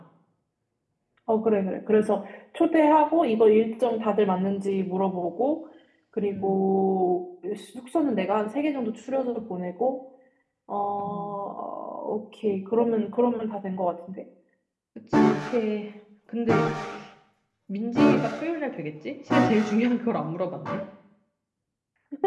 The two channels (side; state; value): both; identical; correlation 1.00